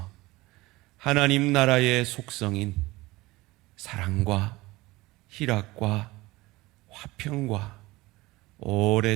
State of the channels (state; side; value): quieter; left; 20.4 dB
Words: 하나님 나라의 속성인 사랑과 희락과 화평과